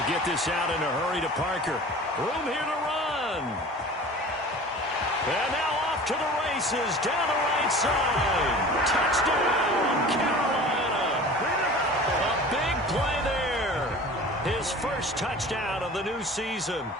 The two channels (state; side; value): normal; both; correlation 0.40